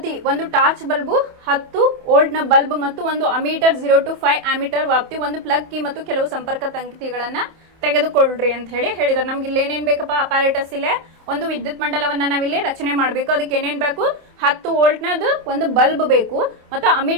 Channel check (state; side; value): late; left; 28 ms